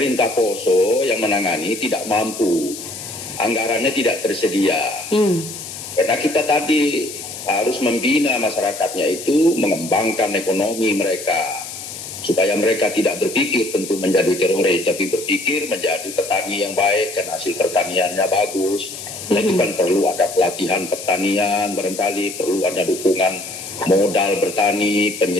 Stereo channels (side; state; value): left; noise; hiss, 10 dB below the sound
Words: Poso yang menangani tidak mampu, anggarannya tidak tersedia. Karena kita tadi harus membina masyarakatnya itu, mengembangkan ekonomi mereka, supaya mereka tidak berpikir tentu menjadi teroris, tapi berpikir menjadi petani yang baik dan hasil pertaniannya bagus. Nah, itu kan perlu ada pelatihan pertanian, barangkali perlu ada dukungan modal bertani,